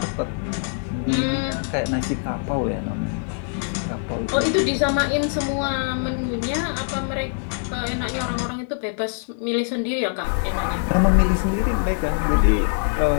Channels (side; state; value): right; silent; 63 dB below the other